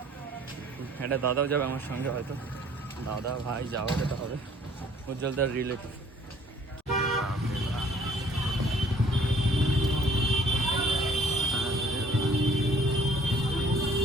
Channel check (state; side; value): normal; both; correlation 0.57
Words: একটা দাদাও যাবে আমার সঙ্গে, হয়তো দাদা ভাই যাওয়া যেতে হবে, উজ্জ্বলদার রিলেটিভ।